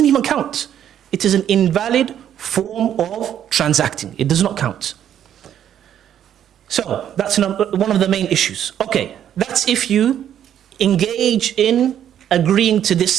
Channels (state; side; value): quieter; left; 10.1 dB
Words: even count. It is an invalid form of transacting. It does not count. So that's one of the main issues. Okay, that's if you engage in agreeing to